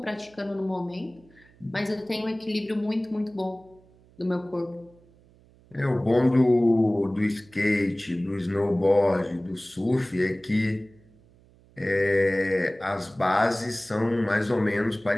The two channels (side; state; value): right; noise; hum, 28 dB below the sound